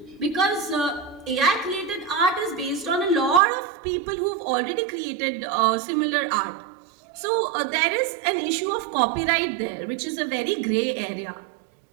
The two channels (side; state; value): left; drops out; at 3.4 s